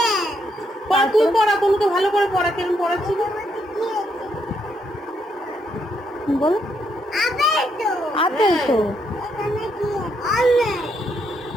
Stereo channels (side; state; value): both; normal; correlation 0.76